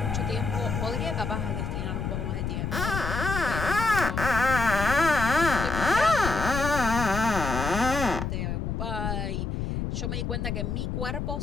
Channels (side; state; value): left; noise; rumble, 2 dB below the sound